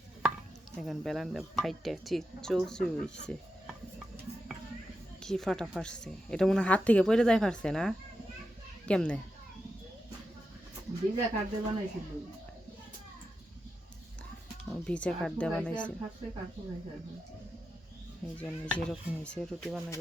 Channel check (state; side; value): normal; both; correlation 0.88